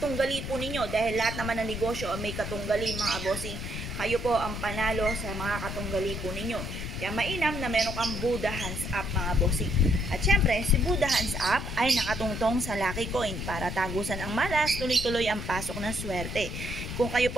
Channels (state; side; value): noise; left; rumble, 6 dB below the sound